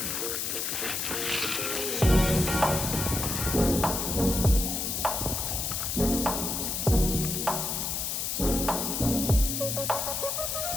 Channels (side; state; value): left; noise; hiss, 1 dB below the sound